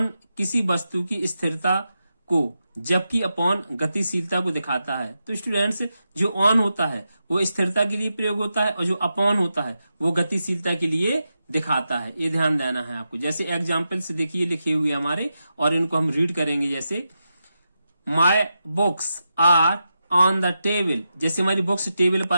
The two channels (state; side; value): inverted; both; correlation -0.88